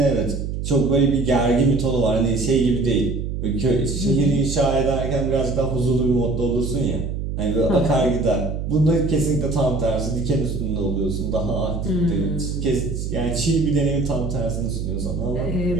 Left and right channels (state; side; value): noise; right; hum, 4 dB below the sound